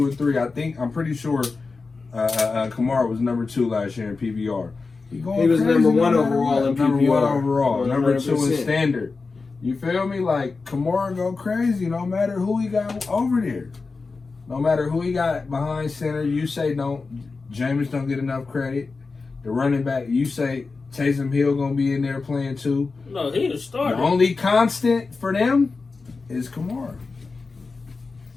and 3. I'm pretty sure Kamara was number 2 last year in PBR. He was number 1 overall in PBR. Number 1 overall. Number 2 in 100%. standard. You feel me? Like Kamara go crazy no matter who he got over there. No matter who he got behind center, you say Jameis don't get enough credit. The running back, you say Taysom Hill gonna be in there playing too. No, he the starter. The only constant for them is Kamara.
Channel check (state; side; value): quieter; right; 4.2 dB